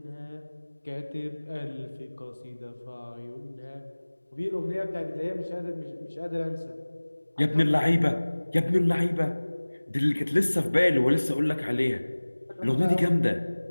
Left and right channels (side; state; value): both; inverted; correlation -1.00